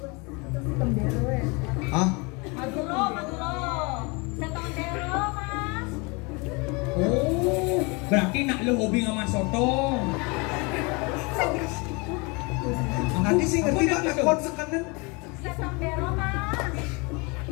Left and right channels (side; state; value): right; quieter; 29.0 dB